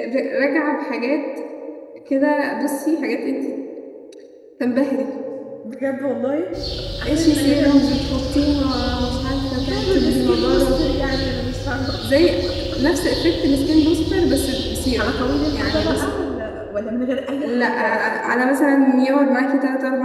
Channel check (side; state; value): both; identical; correlation 1.00